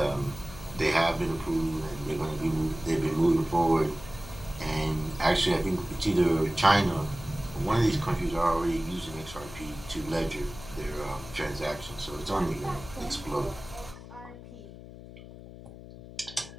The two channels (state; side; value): noise; left; hum, 15 dB below the sound